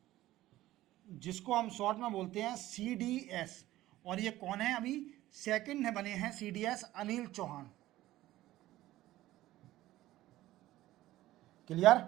जिसको हम शॉर्ट में बोलते हैं CDS। और ये कौन है? अभी सेकंड है बने हैं CDS, अनिल चौहान। क्लियर?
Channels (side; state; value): left; quieter; 15.7 dB